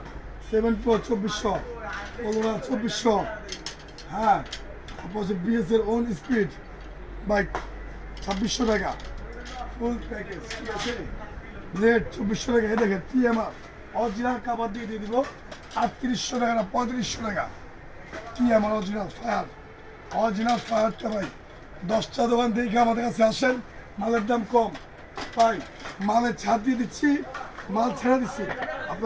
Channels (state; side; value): identical; both; correlation 1.00